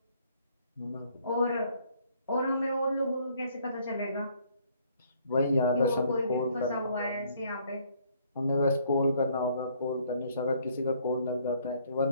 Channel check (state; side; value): inverted; both; correlation -0.64